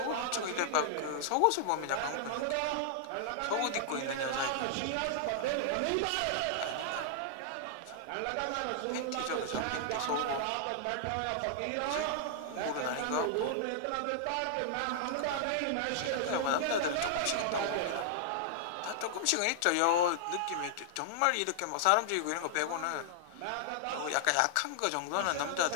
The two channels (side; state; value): both; different; correlation -0.01